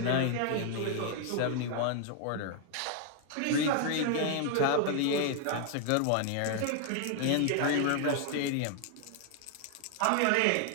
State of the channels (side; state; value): both; different; correlation 0.00